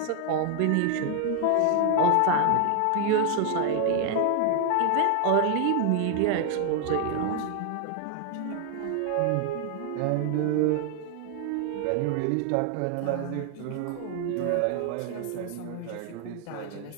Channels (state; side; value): different; both; correlation 0.00